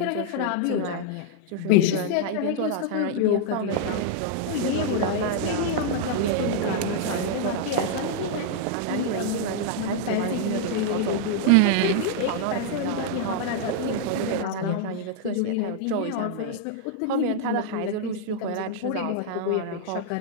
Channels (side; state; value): both; different; correlation -0.01